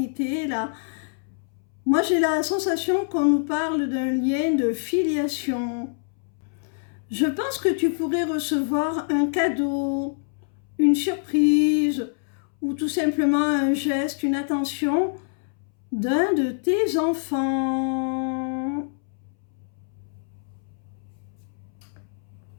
là, moi, j'ai la sensation qu'on nous parle d'un lien de filiation. Je pense que tu pourrais recevoir un cadeau, une surprise, ou tout simplement un geste, une attention d'un de tes enfants.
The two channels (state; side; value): silent; right; 62 dB below the other